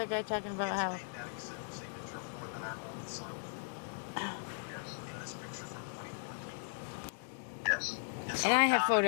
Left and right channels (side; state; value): right; silent; digital silence